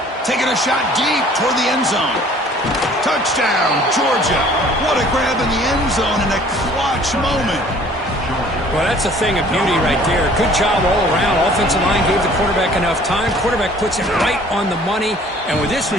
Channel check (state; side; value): normal; both; correlation 0.53